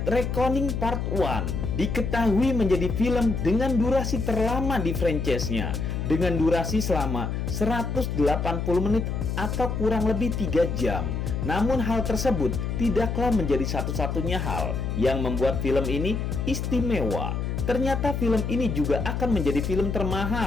Reckoning Part 1 diketahui menjadi film dengan durasi terlama di franchise-nya, dengan durasi selama 180 menit atau kurang lebih 3 jam. Namun hal tersebut tidaklah menjadi satu-satunya hal yang membuat film ini istimewa. Ternyata film ini juga akan menjadi film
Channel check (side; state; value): left; noise; hum, 2 dB below the sound